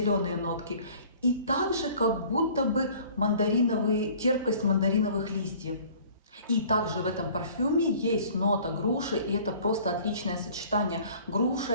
нотки. И также как будто бы терпкость мандариновых листьев. И также в этом парфюме есть нота груши, и это просто отличное сочетание. Груша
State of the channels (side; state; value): both; inverted; correlation -0.50